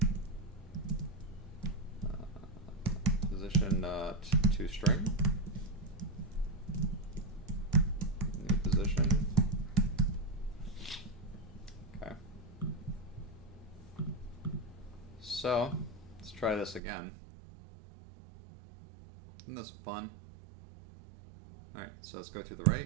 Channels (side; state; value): left; drops out; at 16.8 s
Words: Position to string. New position. Okay. So let's try this again. Isn't this fun? Alright, so let's go to the